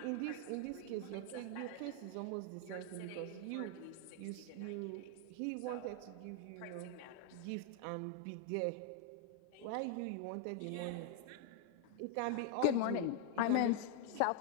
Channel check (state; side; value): different; both; correlation 0.00